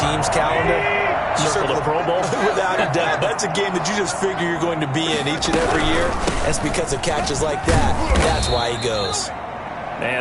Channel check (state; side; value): identical; both; correlation 1.00